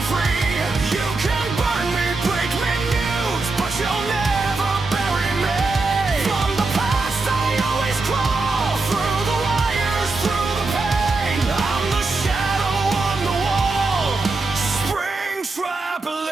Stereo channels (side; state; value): left; quieter; 3.6 dB